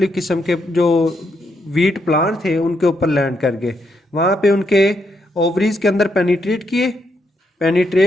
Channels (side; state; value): both; normal; correlation 0.78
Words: किस्म के जो वीट प्लांट थे उनके ऊपर लैंड कर गए। वहाँ पे उनके ओवरीज के अंदर पेनिट्रेट किए।